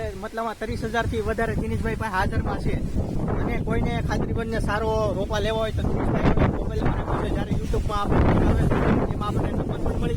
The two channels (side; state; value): both; identical; correlation 1.00